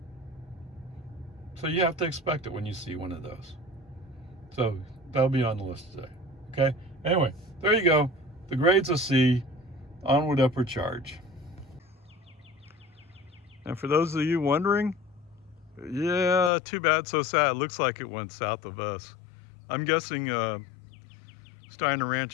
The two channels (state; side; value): drops out; right; at 16.5 s